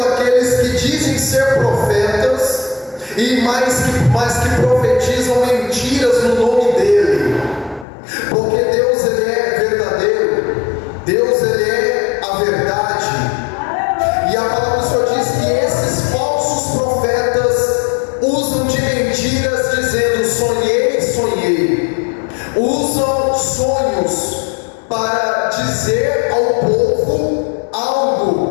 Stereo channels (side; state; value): right; drops out; at 7.9 s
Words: aqueles que dizem ser profetas e mais que profetizam mentiras no nome dele. Porque Deus, ele é verdadeiro, Deus, ele é a verdade. E a palavra do Senhor diz que esses falsos profetas usam de mentiras dizendo: sonhei, sonhei. Usam sonhos para dizer ao povo